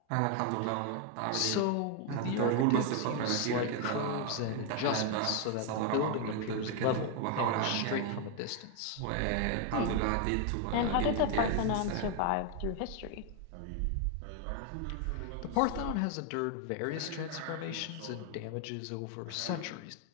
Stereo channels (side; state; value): both; different; correlation 0.01